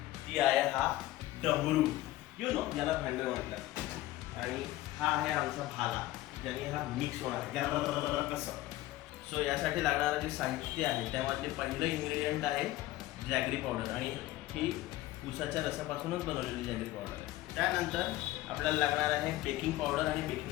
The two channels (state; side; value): quieter; right; 16.4 dB